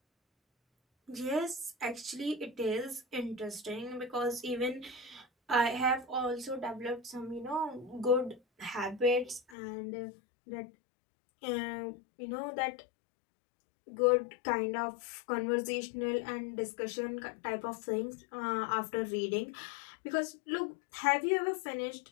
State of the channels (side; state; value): right; drops out; at 9.6 s